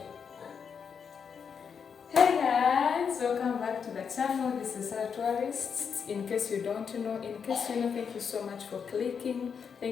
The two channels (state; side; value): quieter; right; 6.6 dB